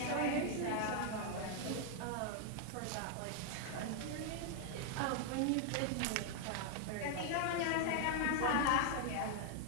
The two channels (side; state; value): both; different; correlation 0.00